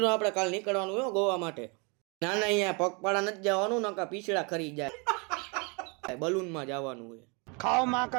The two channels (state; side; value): quieter; left; 31.6 dB